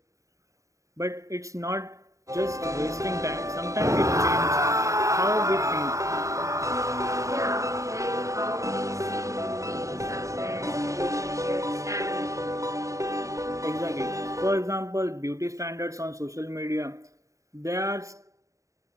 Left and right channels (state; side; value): late; left; 0.15 ms